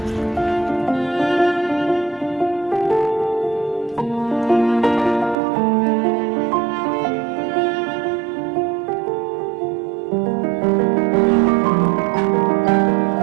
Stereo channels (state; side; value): drops out; left; at 5.4 s